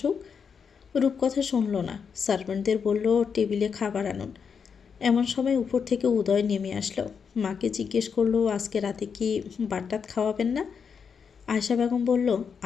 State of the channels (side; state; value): right; quieter; 6.4 dB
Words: রূপকথা শুনল না। সার্ভেন্টদের বলল, টেবিলে খাবার আনুন। এমন সময় উপর থেকে উদয় নেমে আসলো। মাকে জিজ্ঞেস করলো, আজকে রাতে কি ভাত খাওয়াবেন না? আয়েশা বেগম বলল,